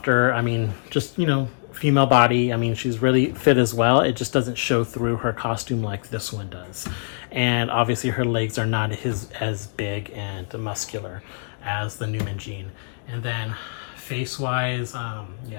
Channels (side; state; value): right; silent; digital silence